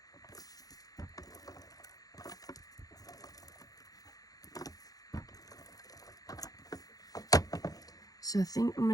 So I think I'm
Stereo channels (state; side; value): late; right; 0.18 ms